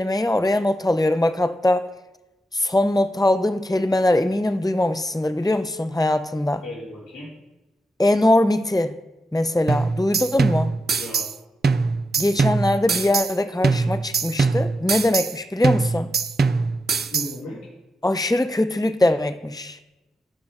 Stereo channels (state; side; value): normal; both; correlation 0.87